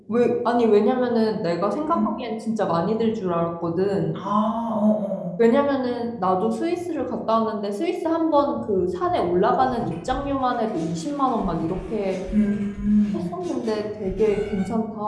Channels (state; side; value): identical; both; correlation 1.00